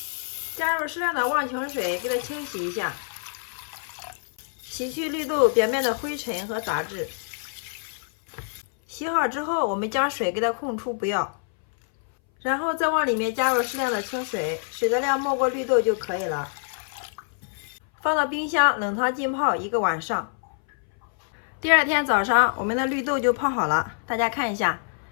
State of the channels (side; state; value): right; silent; 59 dB below the other